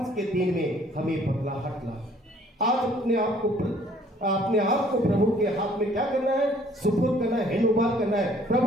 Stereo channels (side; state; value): both; normal; correlation 0.58